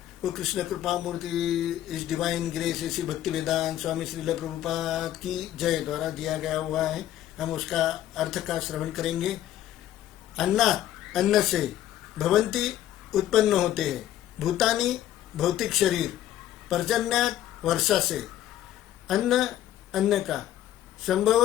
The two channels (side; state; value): right; quieter; 12.6 dB